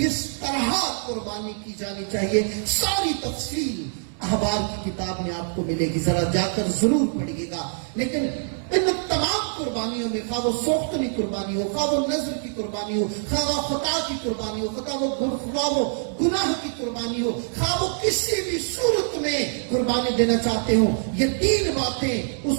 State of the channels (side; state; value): left; silent; digital silence